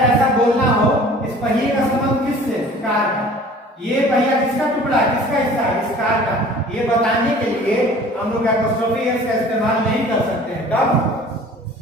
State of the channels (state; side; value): normal; both; correlation 0.47